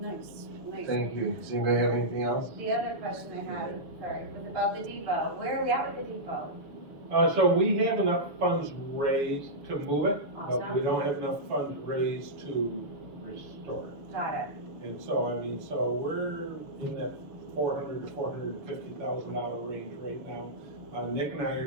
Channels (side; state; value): left; late; 6.5 ms